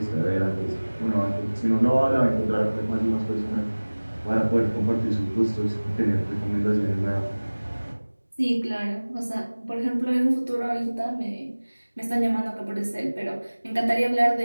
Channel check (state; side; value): inverted; both; correlation -1.00